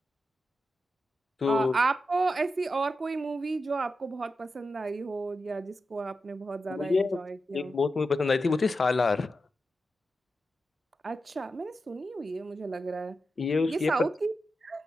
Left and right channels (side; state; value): both; normal; correlation 0.89